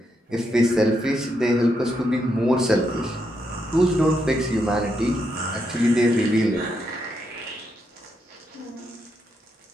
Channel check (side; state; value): both; normal; correlation 0.80